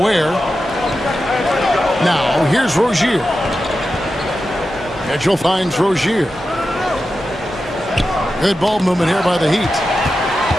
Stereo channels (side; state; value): both; normal; correlation 0.91